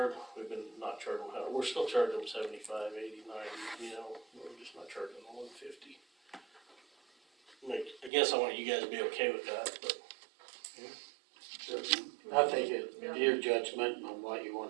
we've been not charging them, we're still charging them 75, 80, 90, you know, we're just not charging them 150. I guess I want you guys to be okay with that, but. I think it's your judgment on what you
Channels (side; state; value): left; drops out; at 8.1 s